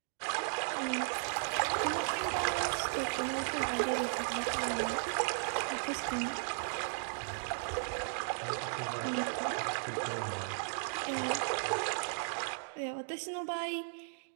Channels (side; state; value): left; silent; digital silence